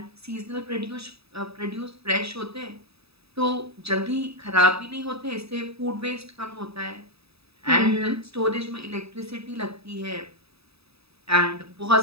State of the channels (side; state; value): left; late; 0.78 ms